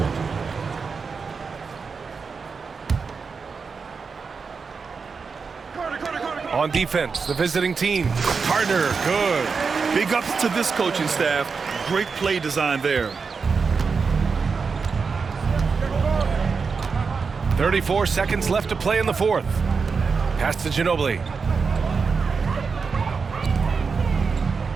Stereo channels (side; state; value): left; quieter; 5.1 dB